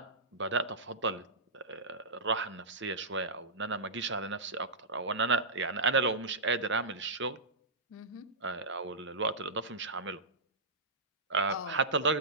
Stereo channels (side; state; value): left; quieter; 3.3 dB